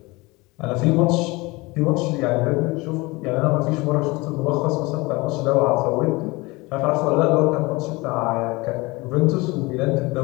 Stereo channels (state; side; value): quieter; right; 23.5 dB